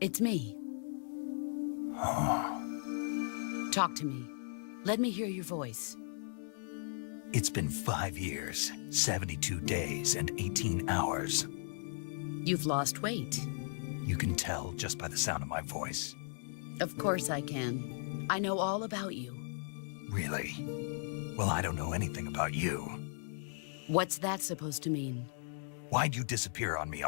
me. Oh. Talk to me. Let me hear your voice. It's been 5 years, 72 days, and 18 hours. You've lost weight. You can tell just by the sound of my voice. Of course I can. I know all about you. Really? Well, I don't know anything about you. What's that supposed to mean? Why'd you disappear on me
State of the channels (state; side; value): silent; right; digital silence